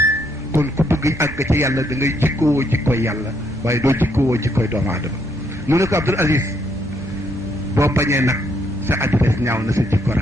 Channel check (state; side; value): normal; both; correlation 0.73